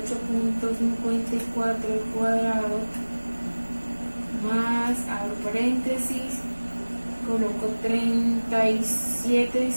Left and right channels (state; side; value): inverted; both; correlation -1.00